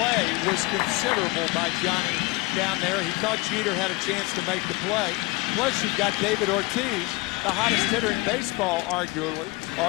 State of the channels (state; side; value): quieter; right; 22.9 dB